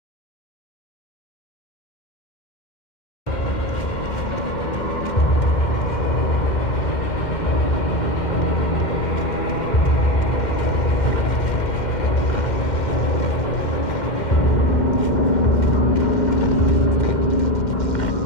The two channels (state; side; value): late; right; 2.1 ms